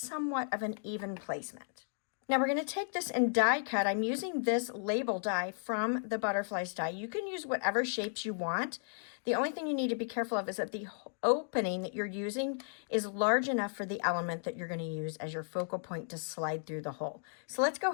of an even placement. Now we're going to take this and die cut. I'm using this label die from the Butterflies die. You can use whatever shapes you want. The only thing you need to be careful of is that the opening that you're using is large enough for the element that you're going to use as your focal point to slide through the hole. So let's go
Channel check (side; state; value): right; silent; digital silence